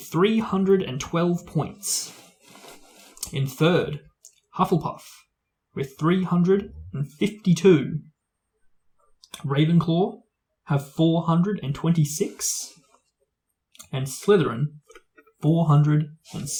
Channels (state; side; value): identical; both; correlation 1.00